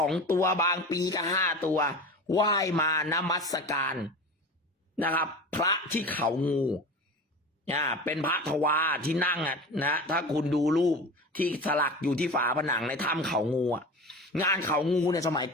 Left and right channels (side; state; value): both; normal; correlation 0.32